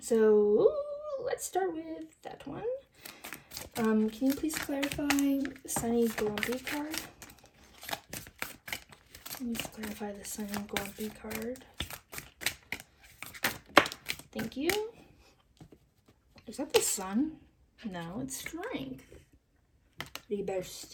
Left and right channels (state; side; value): identical; both; correlation 1.00